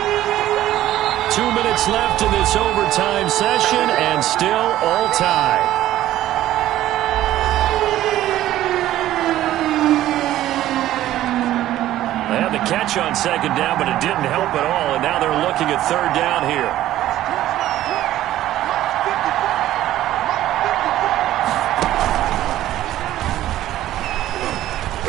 2 minutes left in this overtime session, and still all tied. They had the catch on 2nd down, but it didn't help at all, and now they're looking at 3rd down here.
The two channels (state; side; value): quieter; left; 13.8 dB